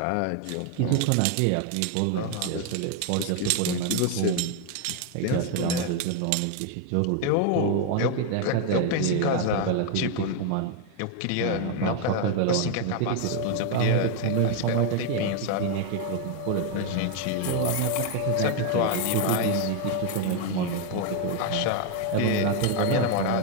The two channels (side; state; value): both; different; correlation 0.01